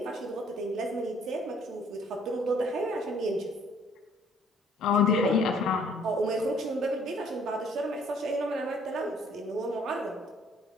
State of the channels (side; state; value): both; normal; correlation 0.60